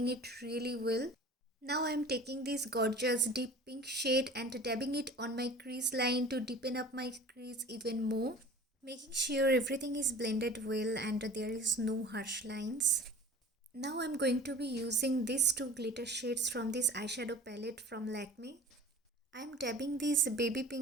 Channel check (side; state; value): both; normal; correlation 0.42